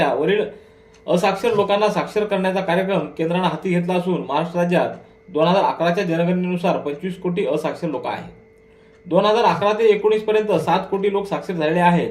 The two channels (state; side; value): identical; both; correlation 1.00